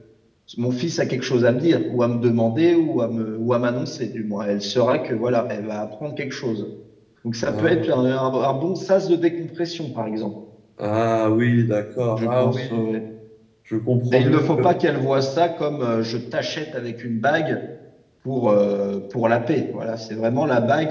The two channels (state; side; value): identical; both; correlation 1.00